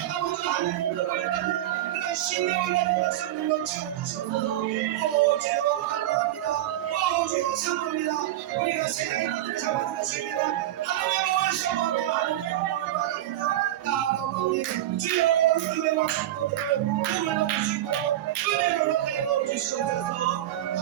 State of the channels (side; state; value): left; quieter; 13.5 dB